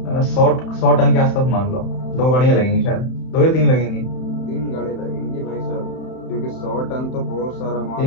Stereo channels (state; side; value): late; right; 31 ms